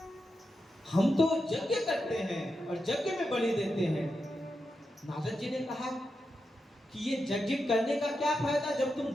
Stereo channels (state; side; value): normal; both; correlation 0.88